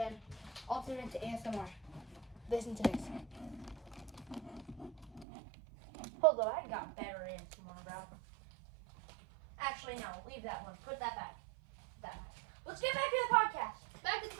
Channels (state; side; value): drops out; left; at 5.2 s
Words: alter it into ASMR. Listen to this. Hold on, I got better ASMR, bro. Actually, no. Leave that one. Put that back. Let's get back to the podcast. Back to the